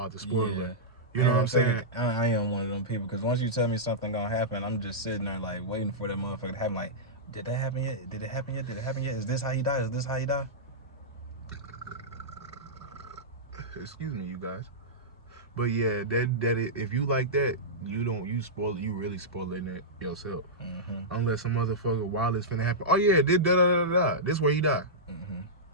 the spoiler. Yeah. You know what I'm saying? I am one of them people, because once you tell me something gonna happen, I'm just sitting there like waiting for that motherfucker to happen. Like, did that happen yet? Did it happen yet? Did it happen yet? Is this how he died? Is this how he died? Excuse me, you guys. But yeah, that if you like that, you really spoiling it yourself. Mm-hmm. Unless some motherfucker while it's finna happen. Oh yeah, this This where he died.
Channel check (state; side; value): normal; both; correlation -0.13